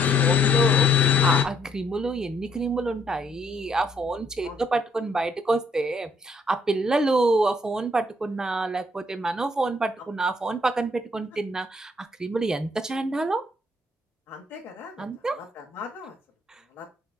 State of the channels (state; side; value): normal; both; correlation 0.68